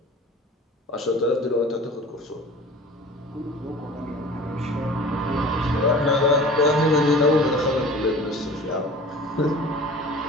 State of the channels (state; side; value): normal; both; correlation 0.42